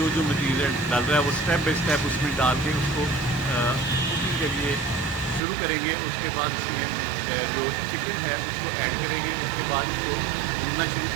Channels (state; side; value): drops out; left; at 5.4 s